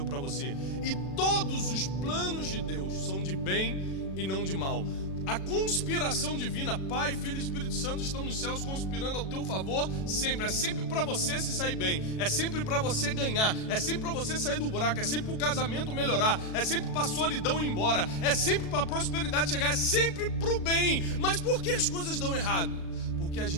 para você. E todos os planos de Deus são de bem e não de mal. A conspiração divina, Pai, Filho e Espírito Santo estão nos céus conspirando ao teu favor sempre. É sempre para você se sair bem, é sempre para você ganhar, é sempre para você sair do buraco, é sempre para o casamento melhorar, é sempre para a solidão ir embora, é sempre para a prosperidade chegar, é sempre para o bem. Mas por que as coisas dão errado? Porque a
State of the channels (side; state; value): right; late; 37 ms